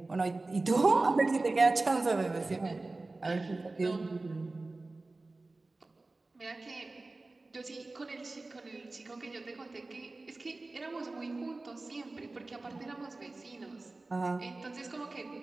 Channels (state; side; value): quieter; left; 3.2 dB